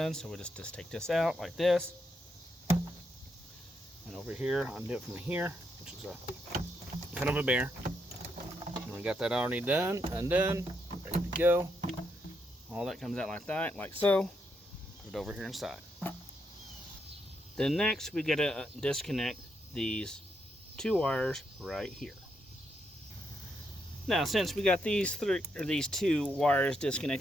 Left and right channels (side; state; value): both; normal; correlation 0.79